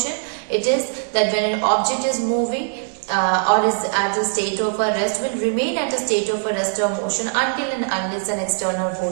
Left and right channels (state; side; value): silent; left; digital silence